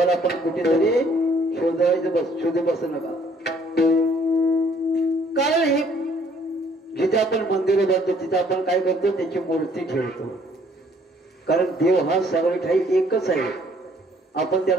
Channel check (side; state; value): both; normal; correlation 0.62